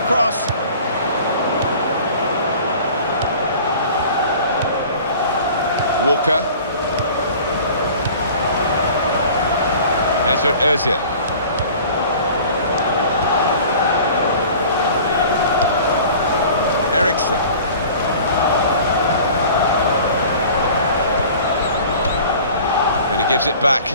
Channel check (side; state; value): both; inverted; correlation -0.44